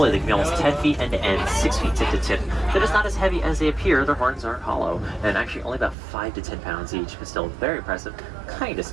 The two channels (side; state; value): left; drops out; at 6.0 s